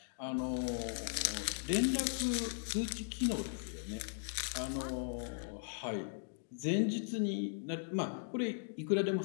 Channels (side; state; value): right; silent; digital silence